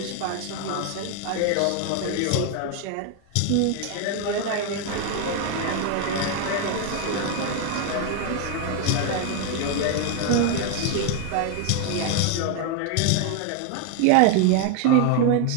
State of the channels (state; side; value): different; both; correlation 0.00